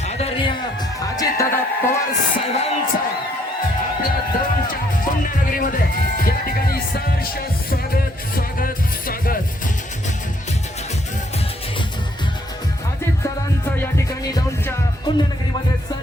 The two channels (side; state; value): both; normal; correlation 0.68